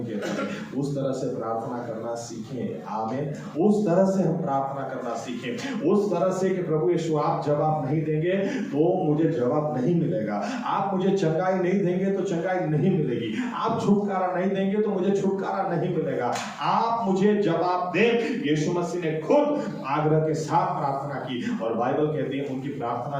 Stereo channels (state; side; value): identical; both; correlation 1.00